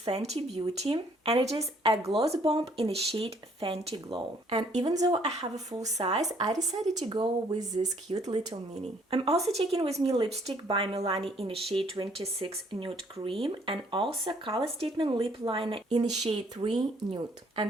Beauty and it is a gloss bomb in the shade Fenty Glow. And even though I have a full size, I decided to go with this cute little mini. I'm also taking with me lipstick by Milani in the shade 26 Nude Cream and also Color Statement Lip Liner in the shade 3 Nude.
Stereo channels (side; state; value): both; normal; correlation 0.63